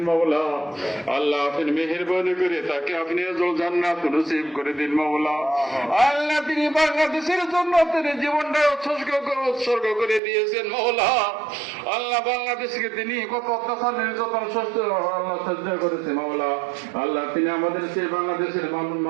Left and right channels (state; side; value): drops out; left; at 10.2 s